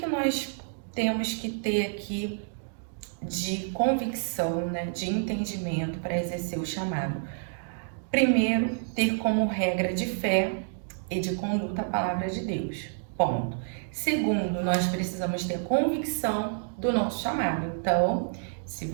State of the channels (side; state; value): left; silent; digital silence